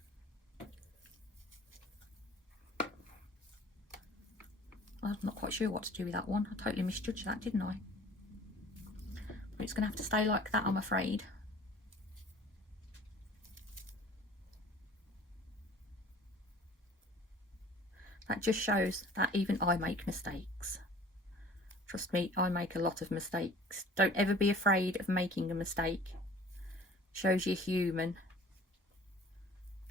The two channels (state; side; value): normal; both; correlation 0.48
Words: I'm not quite sure what to do with that one. I totally misjudged that, didn't I? But it's going to have to stay like that, I'm afraid. That just shows that even I make mistakes. Trust me, I make a lot of mistakes. Don't ever be afraid of making a mistake. Shows you're human.